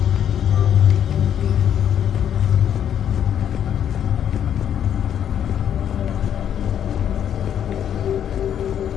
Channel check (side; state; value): right; quieter; 9.4 dB